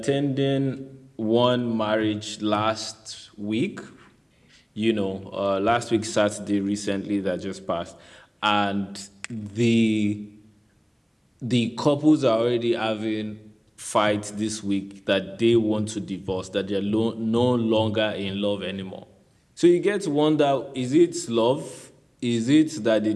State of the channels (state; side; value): identical; both; correlation 1.00